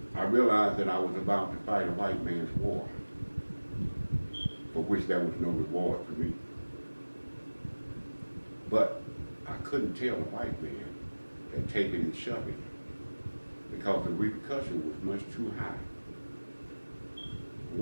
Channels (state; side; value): inverted; both; correlation -1.00